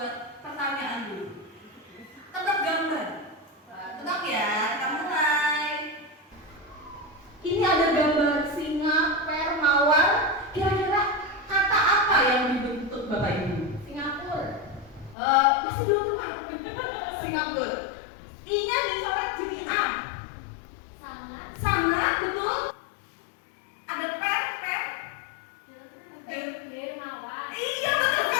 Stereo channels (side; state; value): right; drops out; at 15.2 s